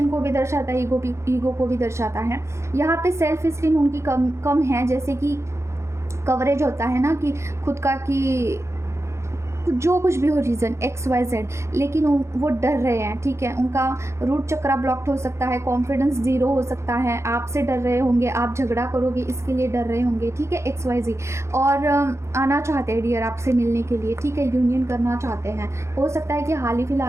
को भी दर्शाता है, ईगो को भी दर्शाता है। यहाँ पे सेल्फ स्टीम उनकी कम है, जैसे कि कवरेज होता है ना कि खुद का, कि जो कुछ भी हो रीज़न XYZ, लेकिन वो डर रहे हैं, ठीक है। उनका रूट चक्रा ब्लॉक्ड हो सकता है, कॉन्फिडेंस ज़ीरो हो सकता है, आपसे डर रहे होंगे, आप झगड़ा करोगे इसके लिए डर रहे होंगे, ठीक है, XYZ। और आना चाहते हैं डियर आपसे मिलने के लिए, ठीक है, यूनियन करना चाहते हैं। हो सकता है कि हाल ही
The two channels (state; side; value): late; left; 0.13 ms